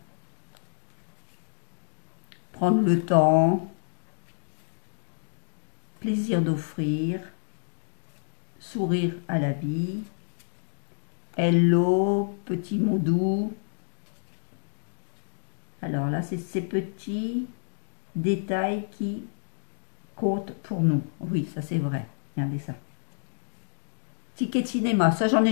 Prendre le temps. Plaisir d'offrir. Sourire à la vie. Hello, petit mot doux. Alors là, c'est ces petits détails qui comptent pour nous. Oui, ça c'est vrai. Regardez ça. Ticket de cinéma. Ça, j'en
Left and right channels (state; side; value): silent; right; digital silence